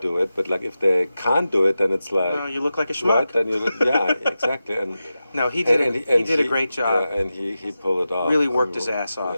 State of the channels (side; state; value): both; inverted; correlation -0.92